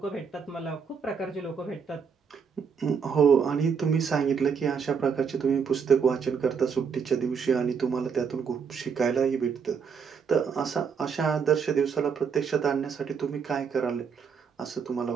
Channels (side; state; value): left; quieter; 6.3 dB